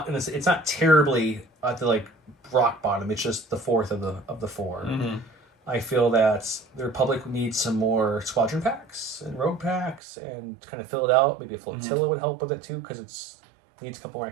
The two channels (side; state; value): left; drops out; at 10.0 s